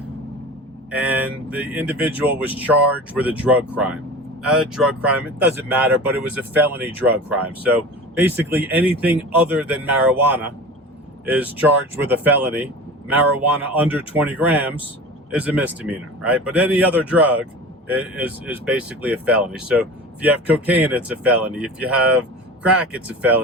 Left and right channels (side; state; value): both; normal; correlation 0.35